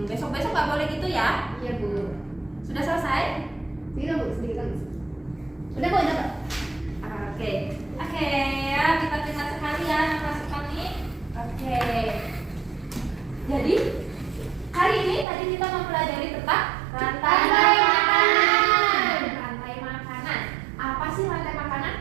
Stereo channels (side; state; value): left; drops out; at 15.2 s